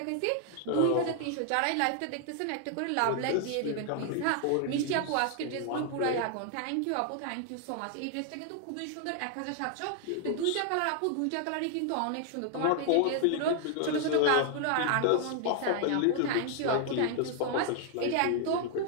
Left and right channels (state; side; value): different; both; correlation 0.00